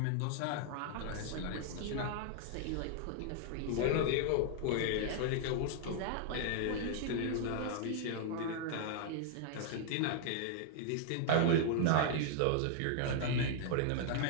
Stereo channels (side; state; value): both; different; correlation -0.01